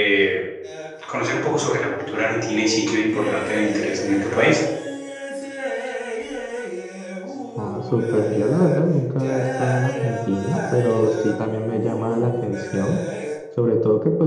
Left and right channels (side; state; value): both; identical; correlation 1.00